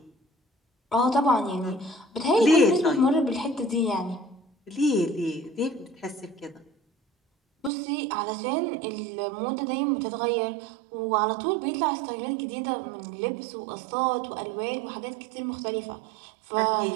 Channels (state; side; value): drops out; left; at 7.7 s